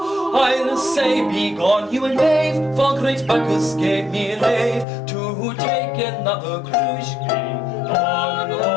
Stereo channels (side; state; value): right; drops out; at 4.9 s